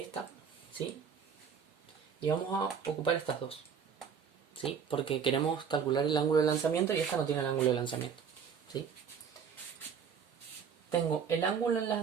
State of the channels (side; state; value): left; quieter; 7.0 dB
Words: esta, ¿sí? Y vamos a ocupar estas dos, ¿sí? Porque queremos calcular el ángulo de lanzamiento y esta no tiene el ángulo de lanzamiento, ¿sí? Tengo el ángulo en